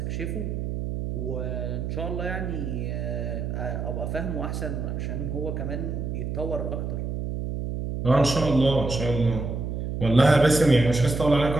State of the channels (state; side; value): noise; right; hum, 3 dB below the sound